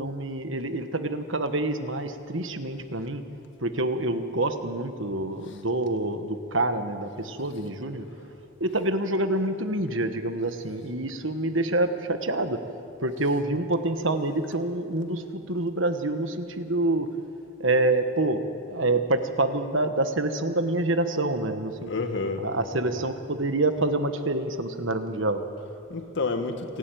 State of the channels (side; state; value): both; normal; correlation -0.02